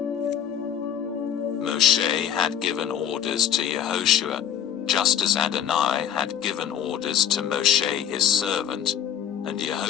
Moshe had given orders to Yehoshua, just as Adonai had given orders to Moshe his servant, and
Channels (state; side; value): quieter; right; 9.5 dB